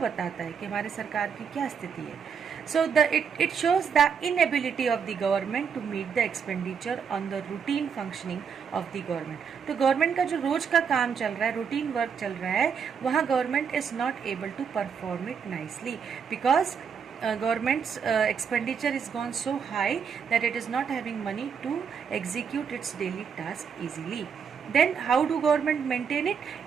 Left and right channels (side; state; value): left; quieter; 6.7 dB